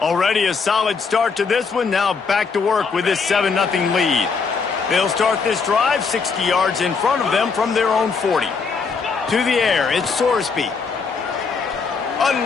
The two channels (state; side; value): quieter; right; 5.1 dB